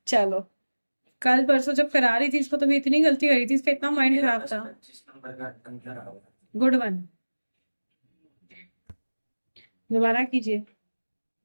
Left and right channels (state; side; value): inverted; both; correlation -1.00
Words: चलो, कल परसों जब करा रही थी इसको तो भी इतनी गलती करी थी, इसका इतना माइंड खराब था। Good one. दोबारा कीजिए।